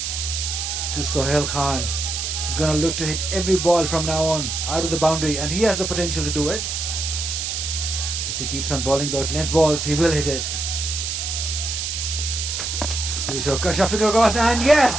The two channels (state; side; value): noise; right; hiss, 3 dB below the sound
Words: To Sohail Khan, who's going to look to hit every ball from now on out of the boundary, and he has the potential to do it. If he keeps on bowling those length balls, he will hit it. Shuffling across, and yes,